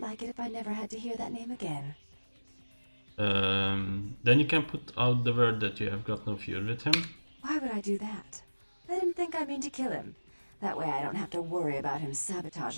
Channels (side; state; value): both; inverted; correlation -1.00